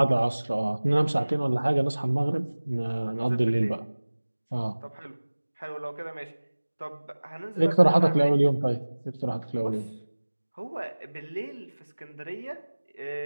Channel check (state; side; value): inverted; both; correlation -1.00